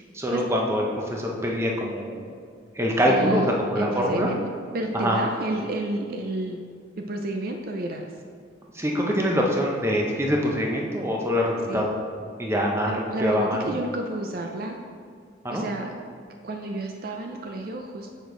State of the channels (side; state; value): both; normal; correlation 0.50